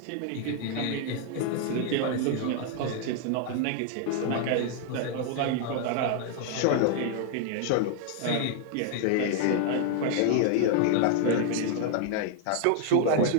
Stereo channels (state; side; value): different; both; correlation 0.00